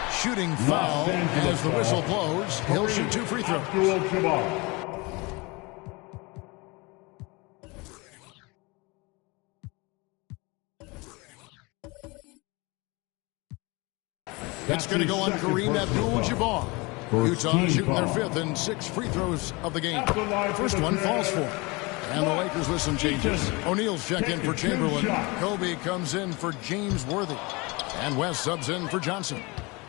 Shooting foul as the whistle blows. He'll shoot 2 free throws. It's going to go on Kareem Abdul-Jabbar. Utah shooting their 5th and 6 free throws of the game. First one falls for. And the Lakers with some changes. O'Neal's checked in for Chamberlain. Kobe comes in for James Worthy. And West subs in for Johnson.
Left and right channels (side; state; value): right; quieter; 25.9 dB